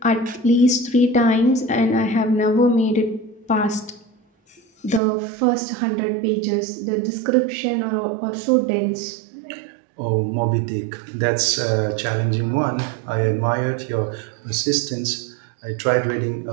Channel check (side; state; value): left; drops out; at 5.0 s